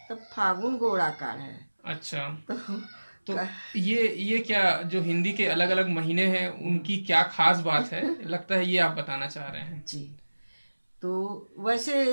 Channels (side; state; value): both; inverted; correlation -1.00